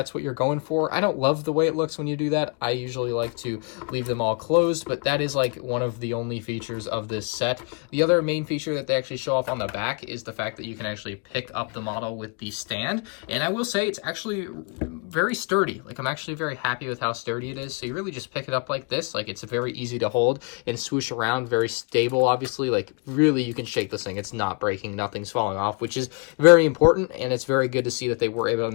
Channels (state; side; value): quieter; right; 34.4 dB